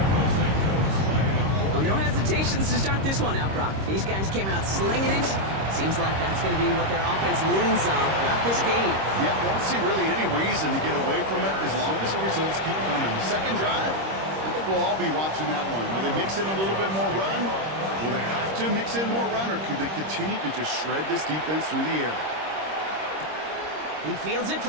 Well, no hesitations to start this one out, Brock. These guys came out slinging it. Seems like that's going to be what their offense leans on throughout this game. Yep, don't see really any reason to get away from it as long as the results keep coming. The second drive, I think we'll all be watching that one. Will they mix in a little bit more run? Will they have to mix in more run, or could they continue to just shred this defense through the air? He fields it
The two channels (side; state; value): left; late; 26 ms